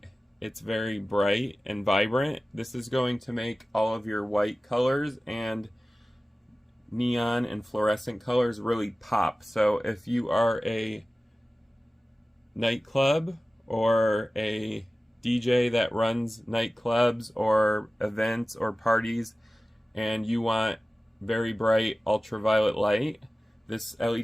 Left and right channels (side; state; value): both; normal; correlation 0.96